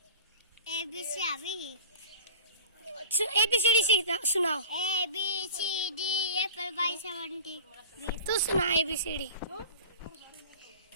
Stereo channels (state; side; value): inverted; both; correlation -0.38